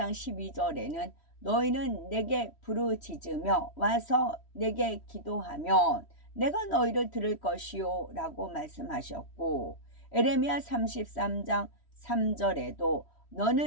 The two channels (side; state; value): right; late; 3.1 ms